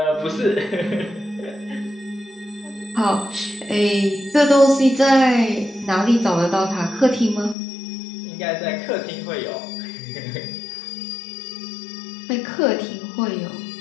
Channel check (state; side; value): drops out; right; at 7.6 s